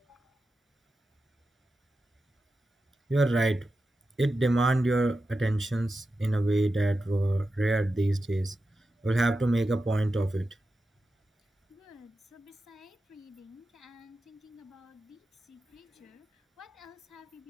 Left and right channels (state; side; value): normal; both; correlation 0.91